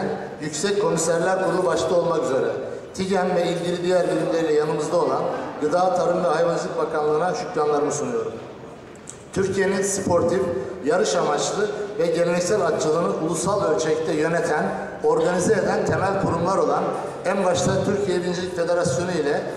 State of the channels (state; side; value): identical; both; correlation 1.00